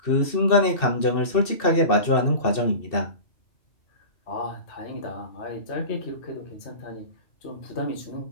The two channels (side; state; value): right; late; 2.7 ms